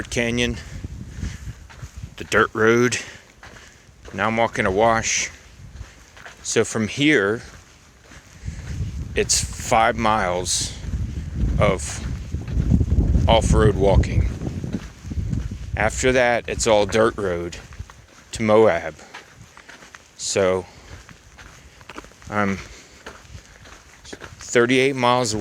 Canyon, the dirt road. Now I'm walking a wash. So from here, it's 5 miles of off-road walking. After that, it's all dirt road to Moab. So I'm 38 miles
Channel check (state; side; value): identical; both; correlation 1.00